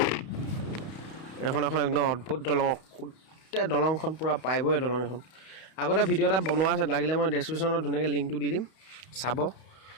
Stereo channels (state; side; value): late; right; 32 ms